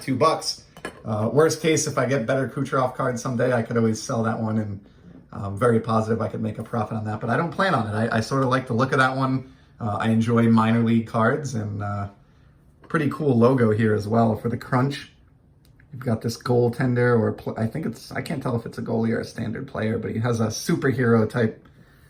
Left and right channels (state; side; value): identical; both; correlation 1.00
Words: Worst case, if I get better Kucherov cards someday, I could always sell that one, and I'm very positive I could make a profit on that, but I don't plan on it. I sort of like the look of that one. I enjoy minor league cards, and pretty cool logo here as well for the Crunch. You've got this goaltender, or I can't tell if it's a goalie or a standard player, but he has a superhero type